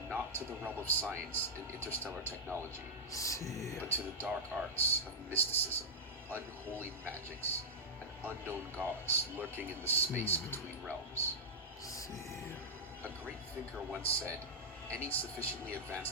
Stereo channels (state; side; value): normal; both; correlation -0.08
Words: not to the realm of science and interstellar technology, but to the dark arts of mysticism, unholy magics, and unknown gods lurking in the space between realms. A great thinker once said, any sufficiently